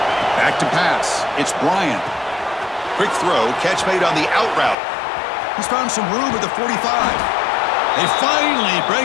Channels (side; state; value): right; drops out; at 4.8 s